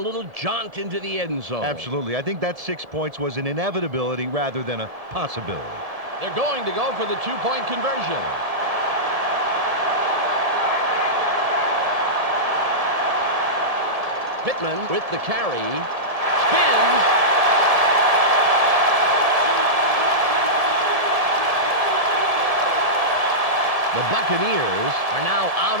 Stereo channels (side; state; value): left; late; 1.7 ms